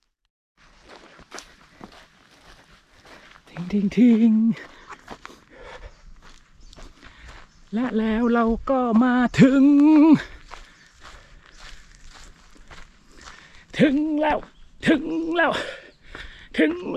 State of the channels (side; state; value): both; identical; correlation 1.00